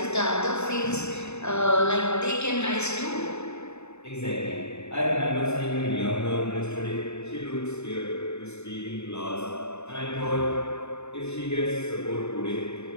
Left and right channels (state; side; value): late; right; 0.81 ms